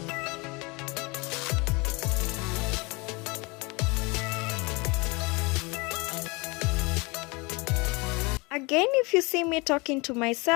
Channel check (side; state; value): right; quieter; 27.0 dB